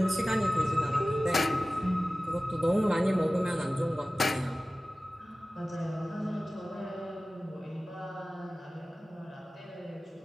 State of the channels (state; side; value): normal; both; correlation 0.96